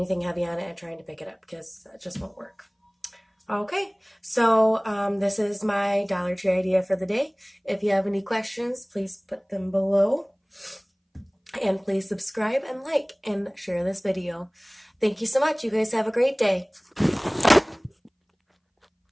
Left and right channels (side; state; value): both; identical; correlation 1.00